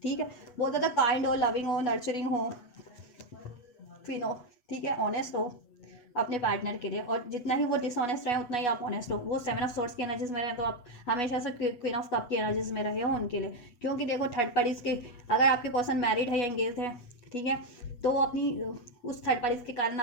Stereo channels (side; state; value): right; late; 8.2 ms